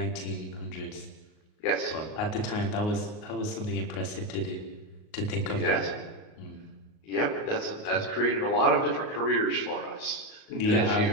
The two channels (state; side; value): late; right; 38 ms